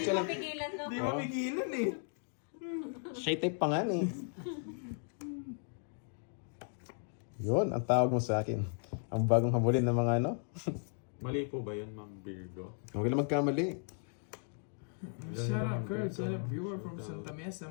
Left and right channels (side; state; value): right; silent; 54 dB below the other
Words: mapigilan, no? Hindi mapigilan eh. Shy type pa nga eh. Yun, ang tawag mo sa akin. Ang bagong habulin ng mga ano. Mali po ba yun, Ma'am Virgo? Huwag lang magkamali. Shout out Kurt, shout out viewer from Santa Mesa,